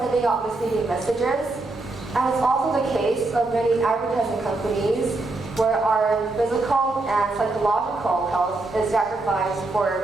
out misleading messages, and it's also the case of many advertising companies where our physical and psychological health is sacrificed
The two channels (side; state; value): left; quieter; 3.1 dB